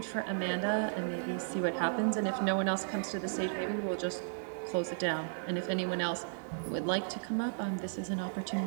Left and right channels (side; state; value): left; silent; digital silence